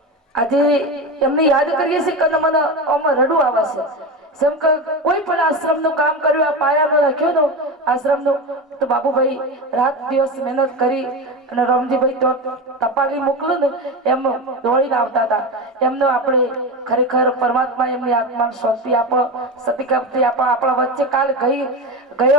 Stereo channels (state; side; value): normal; both; correlation 0.21